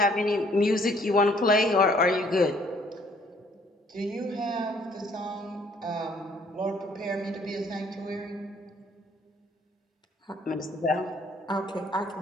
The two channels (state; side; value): normal; both; correlation 0.62